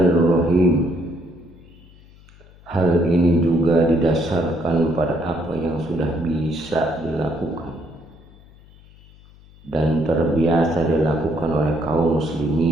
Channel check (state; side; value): noise; left; hum, 25 dB below the sound